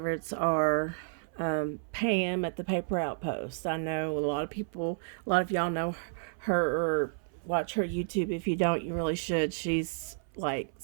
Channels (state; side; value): silent; left; 57 dB below the other